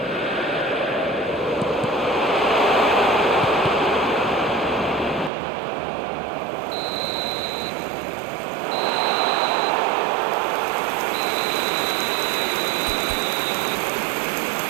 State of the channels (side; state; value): left; drops out; at 5.3 s